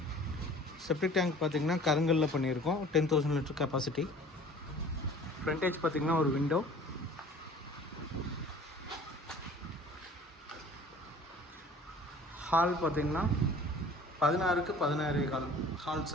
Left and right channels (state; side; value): normal; both; correlation 0.48